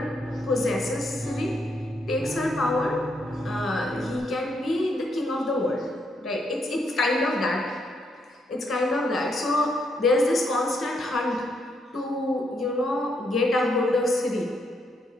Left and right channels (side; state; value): both; normal; correlation 0.76